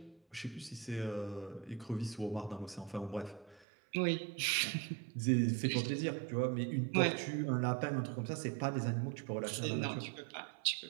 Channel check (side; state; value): left; drops out; at 3.7 s